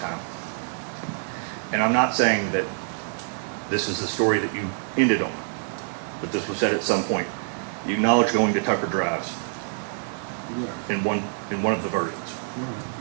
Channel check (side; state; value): left; silent; digital silence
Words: And I'm not saying that this is the story that you ended on, but this was said at some point. You acknowledge going to Tucker Drives Yeah. in one of the versions. Right.